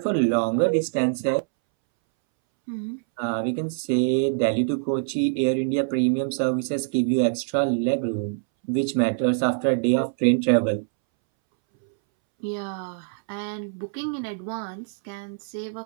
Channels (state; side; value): silent; left; 62 dB below the other